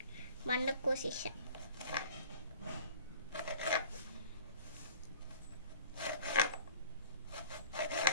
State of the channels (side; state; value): both; inverted; correlation -0.47